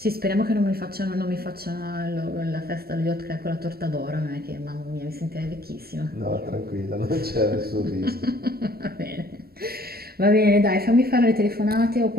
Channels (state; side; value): late; left; 0.45 ms